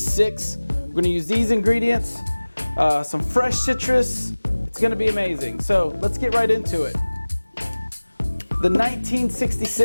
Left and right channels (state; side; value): inverted; both; correlation -1.00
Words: We're gonna use these ingredients, some fresh citrus. It's gonna be amazing. So let's get right into it. The